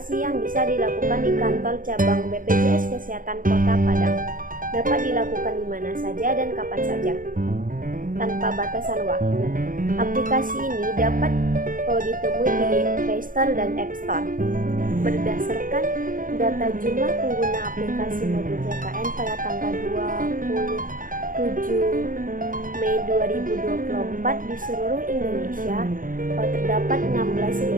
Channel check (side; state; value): left; late; 0.40 ms